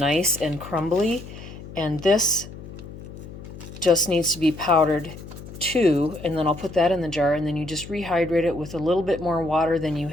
and crumbly, and this just needs to be powdered too, and then I'll put that in the jar, and then you just rehydrate it with a little bit more water than you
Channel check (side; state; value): left; noise; hum, 14 dB below the sound